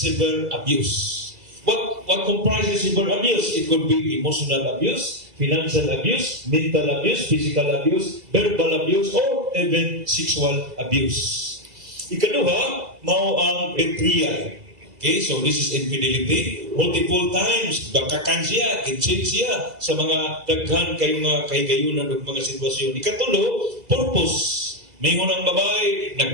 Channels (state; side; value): late; left; 2.0 ms